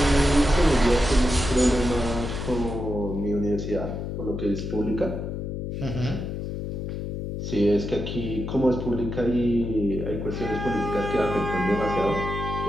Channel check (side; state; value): left; noise; hum, 5 dB below the sound